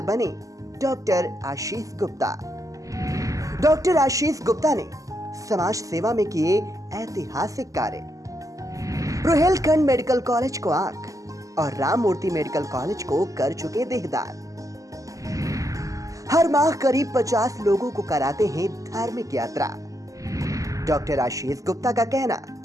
बने डॉक्टर आशीष गुप्ता। डॉक्टर आशीष गुप्ता ने समाज सेवा में किए ऐतिहासिक कार्य। रोहेलखंड मेडिकल कॉलेज को आंख और राम मूर्ति मेडिकल कॉलेज को कर चुके देहदान। हर माह करीब 50 लोगों को कराते हैं धार्मिक यात्रा। डॉक्टर आशीष गुप्ता का कहना,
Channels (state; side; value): late; left; 0.16 ms